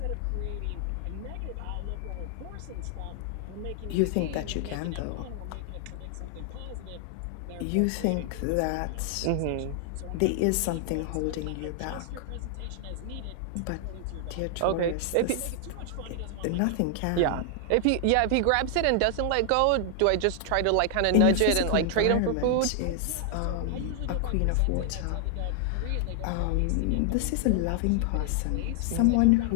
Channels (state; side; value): different; both; correlation 0.00